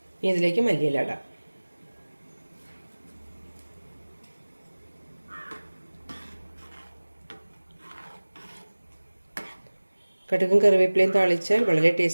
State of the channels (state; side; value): inverted; both; correlation -1.00